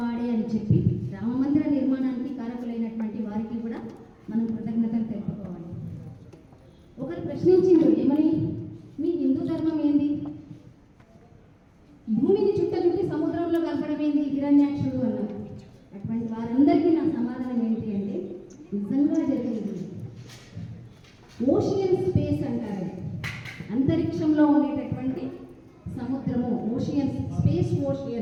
అని చెప్పి రామమందిర నిర్మాణానికి కారకులైనటువంటి వారికి కూడా మనం కృతజ్ఞతలు తెలుపుకోవాలి. ఒకరు ప్రశ్నించిండు, ఏమని, మీ హిందూ ధర్మం ఏంది, భూమిని చుట్టి సముద్రంలో కలపడం ఏంది హిరణ్యాక్షుడు అన్నారు. అటువంటి వారందరికీ నా సమాధానం ఏంటి అంటే, నిజంగా జరిగింది ఓషియన్ స్పేస్ అంటారు. అంతరిక్షంలో ఉండేటటువంటి సముద్రము ఓషియన్ స్పేస్.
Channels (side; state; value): both; identical; correlation 1.00